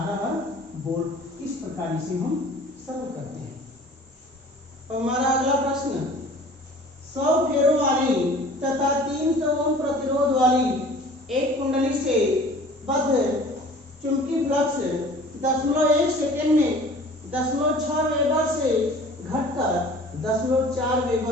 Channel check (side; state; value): both; normal; correlation 0.46